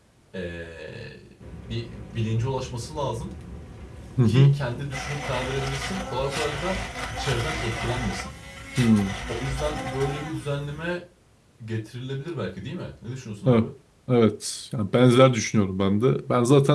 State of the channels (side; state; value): both; identical; correlation 1.00